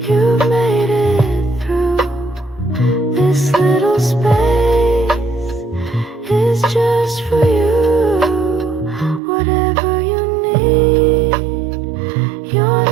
you made it through. This little space is just for you. Whatever you need, you're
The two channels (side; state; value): left; drops out; at 9.2 s